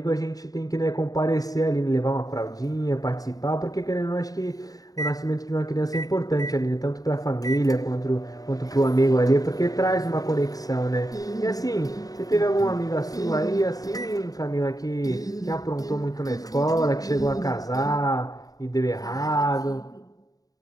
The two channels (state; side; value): late; right; 0.18 ms